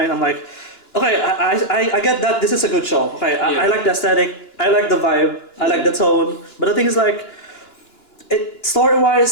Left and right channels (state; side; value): late; right; 2.9 ms